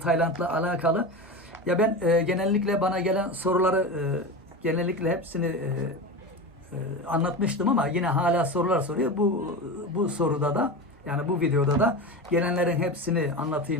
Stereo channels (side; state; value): both; normal; correlation 0.24